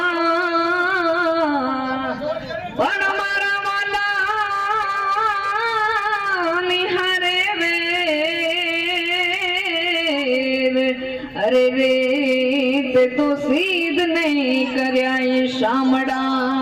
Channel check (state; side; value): identical; both; correlation 1.00